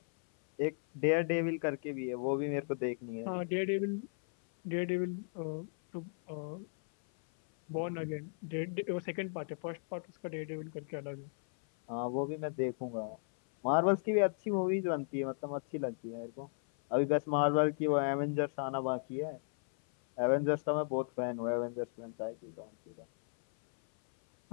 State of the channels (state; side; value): silent; right; 54 dB below the other